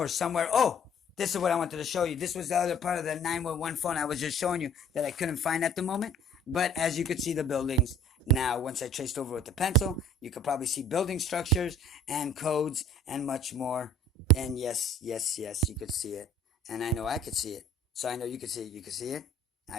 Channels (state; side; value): normal; both; correlation 0.53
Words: somewhere. Oh, this is what I wanted to show you. This was the other part of the 911 phone I was just showing you that I couldn't find at the moment. But as you could see the buildings now, once I traced over with the pencil, you could probably see building structures and codes and much more. And yes, you could see it. And I know I could see it. So I know you could see it. You could see it.